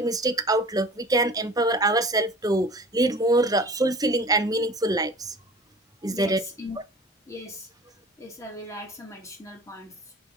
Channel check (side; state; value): both; normal; correlation 0.42